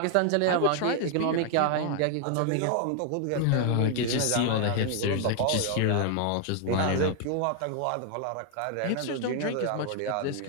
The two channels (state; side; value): different; both; correlation 0.00